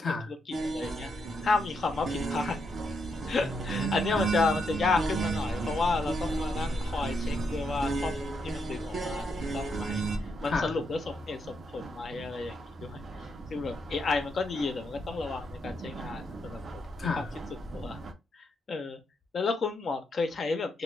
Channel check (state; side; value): normal; both; correlation 0.80